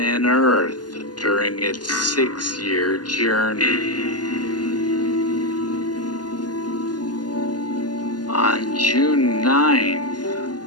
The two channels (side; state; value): right; late; 0.70 ms